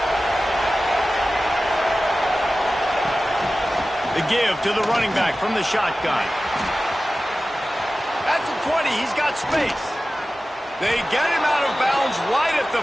The give to the running back from the shotgun. At the 20, he's got space. They get him out of bounds right at the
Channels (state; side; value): normal; both; correlation 0.95